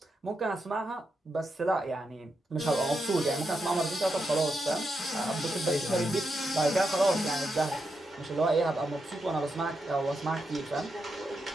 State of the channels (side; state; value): both; normal; correlation 0.85